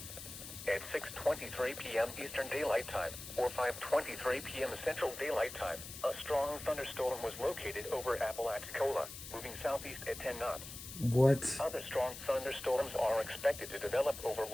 At 6:23 p.m. Eastern Daylight Time or 5:23 p.m. Central Daylight Time, a strong thunderstorm was located over Apalachicola, moving southeast at 10 knots. What? Other strong thunderstorms are expected to develop over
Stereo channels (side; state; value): left; noise; hiss, 11 dB below the sound